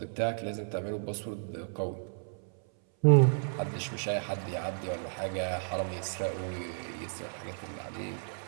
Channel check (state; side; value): silent; left; 56 dB below the other